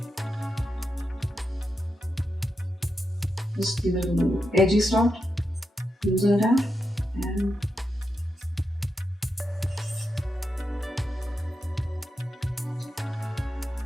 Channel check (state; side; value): normal; both; correlation 0.86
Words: just give it a little edgy start, loosen it out, and